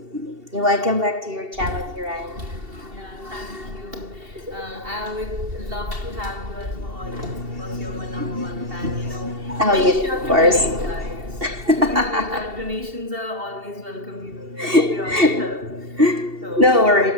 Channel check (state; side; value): late; left; 2.7 ms